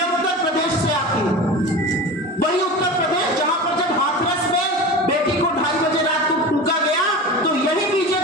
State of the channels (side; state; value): both; normal; correlation 0.31